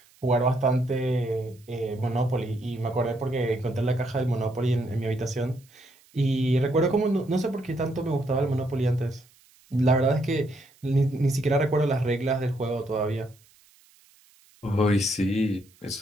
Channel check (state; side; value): noise; right; hiss, 30 dB below the sound